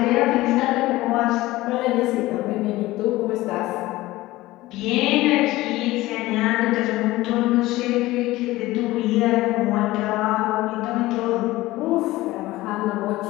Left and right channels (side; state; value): right; quieter; 18.0 dB